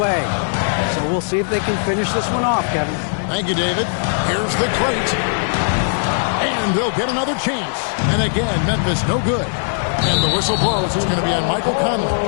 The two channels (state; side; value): silent; right; 63 dB below the other